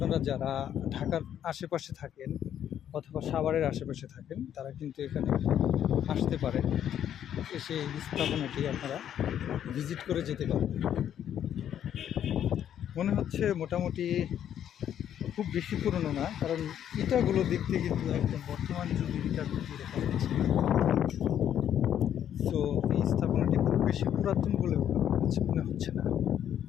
যারা ঢাকার আশেপাশে থাকেন অথবা সাভারের আশেপাশে থাকেন তারা কিন্তু এখানে আসতে পারেন, এসে এই স্থাপনাটি আপনারা ভিজিট করে যেতে পারেন। মনে হচ্ছে মোটামুটি খুব বেশি পুরনো না, কারণ ইটাগুলো দেখতে কিন্তু একদম বর্তমান যুগের ইটার মতো দেখা যাচ্ছে। তো এই স্থাপনাটি খুব বেশি পুরাতন বলে মনে হচ্ছে না,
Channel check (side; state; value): right; quieter; 10.0 dB